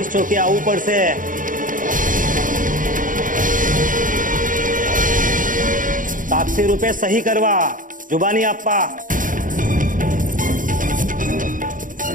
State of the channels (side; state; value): left; late; 0.39 ms